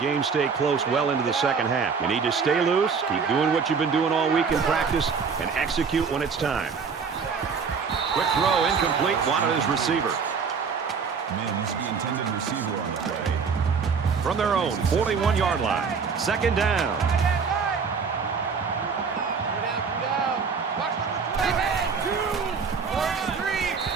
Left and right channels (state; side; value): quieter; left; 5.7 dB